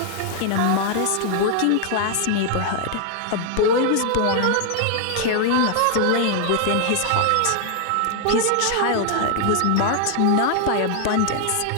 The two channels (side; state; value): both; different; correlation 0.00